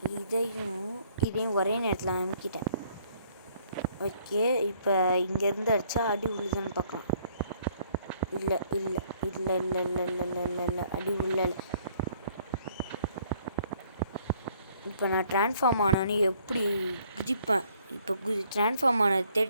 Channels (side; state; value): both; inverted; correlation -0.63